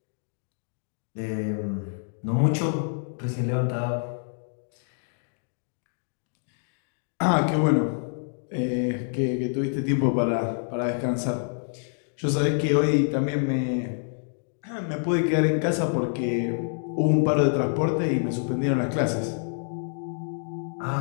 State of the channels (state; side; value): silent; right; 60 dB below the other